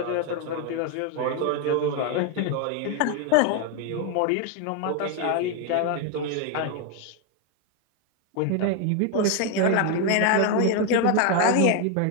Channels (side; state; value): both; different; correlation 0.01